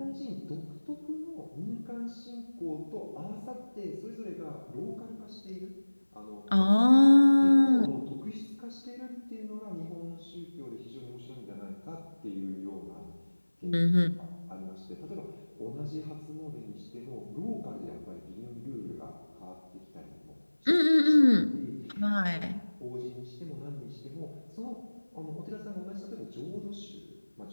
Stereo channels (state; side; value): inverted; both; correlation -1.00